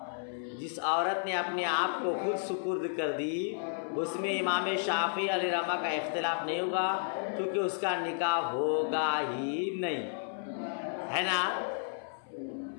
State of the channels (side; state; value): right; silent; 56 dB below the other